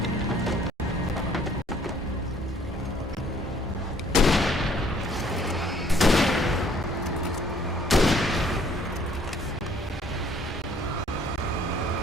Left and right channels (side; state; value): both; normal; correlation 0.60